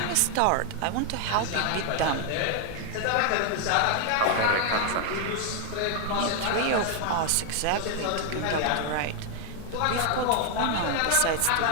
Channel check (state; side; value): different; both; correlation 0.00